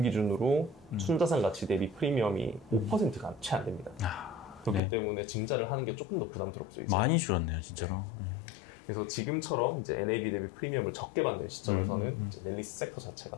기준으로 순자산 가치 대비 프리미엄이 5%가 채 안 됩니다. 그렇기 네. 때문에 증자를 하는 게 조금 더 부담스럽죠. 이제. 많이 줄었네요, 진짜로. 네. 그래서 지금처럼 이제 NAV 대비 프리미엄을 적게 받는 시점에서는 이제 넬리스 섹터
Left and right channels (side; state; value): right; drops out; at 4.8 s